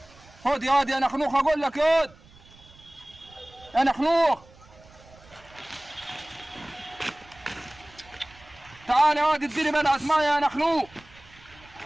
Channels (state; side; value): noise; right; rumble, 25 dB below the sound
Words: خد يا واد يا نخنوخ، اقول لك يا واد يا نخنوخ. تعال يا واد اديني بلعة ميه يا نخنوق.